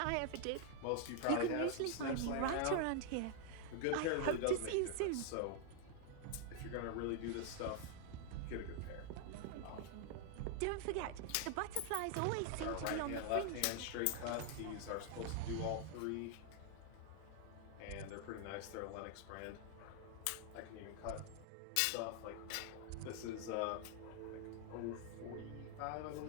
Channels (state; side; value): different; both; correlation 0.00